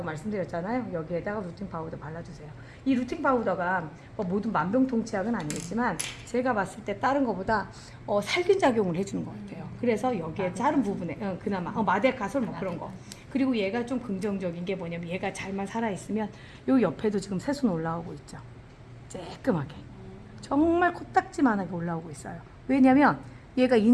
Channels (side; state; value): both; identical; correlation 1.00